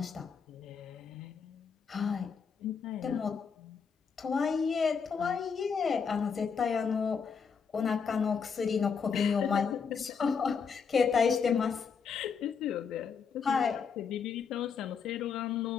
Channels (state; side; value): quieter; right; 6.1 dB